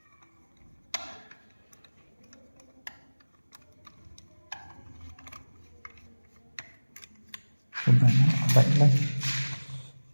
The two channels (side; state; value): both; inverted; correlation -1.00